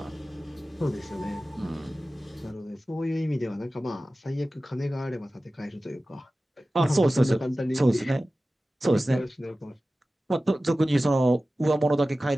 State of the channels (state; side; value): normal; both; correlation 0.96